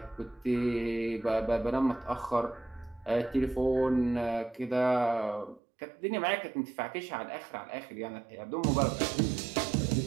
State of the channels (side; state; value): left; drops out; at 5.6 s